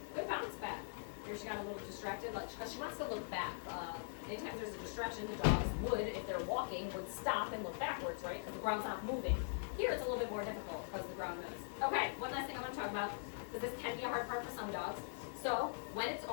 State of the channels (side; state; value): right; silent; digital silence